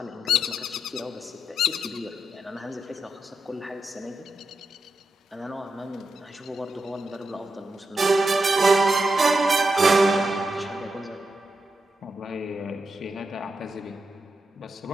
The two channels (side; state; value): both; normal; correlation 0.86